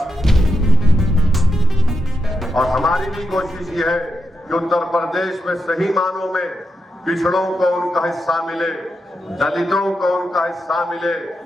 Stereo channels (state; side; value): normal; both; correlation 0.85